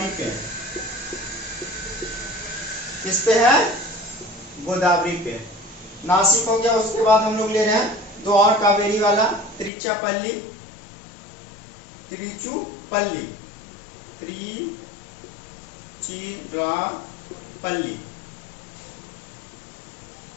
पे है। किस पे है? गोदावरी पे। नासिक हो गया। उसके बाद हम लोग ले रहे हैं दो और कावेरी वाला, त्रिचुपल्ली, त्रिचुपल्ली, त्रिचिरापल्ली।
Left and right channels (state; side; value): drops out; right; at 9.7 s